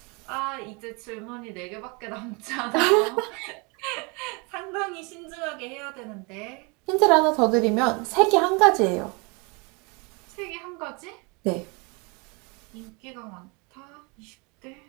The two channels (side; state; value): left; quieter; 30.4 dB